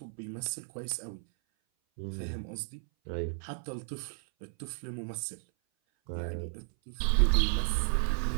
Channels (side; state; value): left; silent; 56 dB below the other